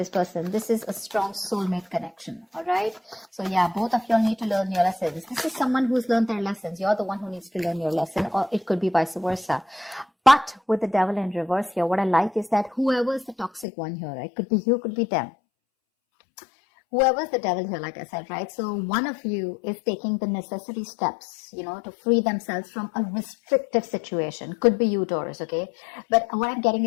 person. This is a strong soulmate connection, all right? So yeah, both of you all need to learn your lessons. This is someone who's learned their lessons. You're the one who needs to learn your lesson, or it could be vice versa. But with the Devil in reverse here, what I like is that whoever is the toxic one here, right? Could be you, could be them. Whoever's the devil here, like I said, right? So one of you is taking the necessary steps, to free themselves from a restrictive situation. Could be you, Taurus, okay? But what I'm getting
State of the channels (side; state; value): right; drops out; at 13.7 s